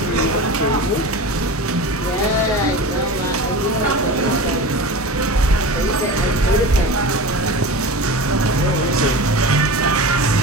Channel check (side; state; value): both; normal; correlation 0.31